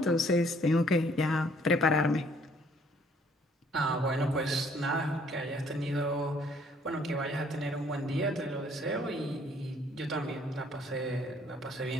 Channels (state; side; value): normal; both; correlation 0.62